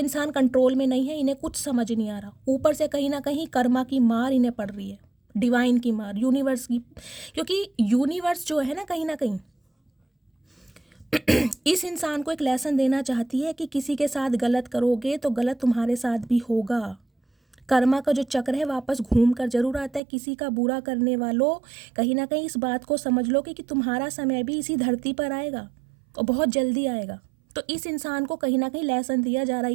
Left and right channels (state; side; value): drops out; left; at 20.0 s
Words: कंट्रोल में नहीं है, इन्हें कुछ समझ नहीं आ रहा, ऊपर से कहीं ना कहीं कर्मा की मार इन्हें पड़ रही है। डिवाइन की मार, यूनिवर्स की, क्योंकि यूनिवर्स जो है ना कहीं इस इंसान को एक लेसन देना चाहती है कि किसी के साथ गलत करोगे तो गलत तुम्हारे साथ भी होगा। कर्मा का जो चक्र है वापस घूम कर जरूर आता है। किसी का बुरा करने वालों, कहीं ना कहीं इस बात को समझ लो कि तुम्हारा समय भी इसी धरती पर आएगा और बहुत जल्दी आएगा। तो इस इंसान को कहीं ना कहीं लेसन दिया जा रहा है।